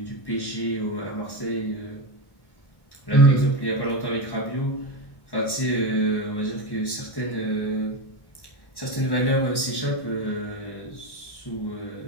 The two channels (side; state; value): right; late; 1.1 ms